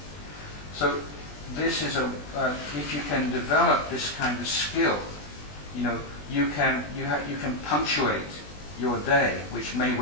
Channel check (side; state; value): right; late; 20 ms